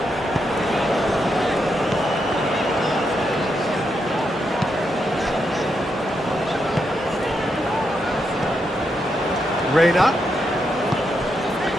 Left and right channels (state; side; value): normal; both; correlation 0.82